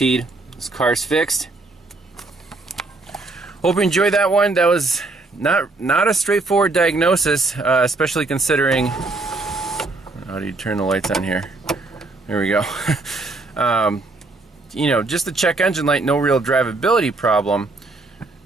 this car's fixed. Hope you enjoyed that one. That was not a straightforward diagnosis, especially considering. How do you turn the lights on here? There we go. You know, just the check engine light, no real drivability problem,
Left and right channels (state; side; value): quieter; left; 3.3 dB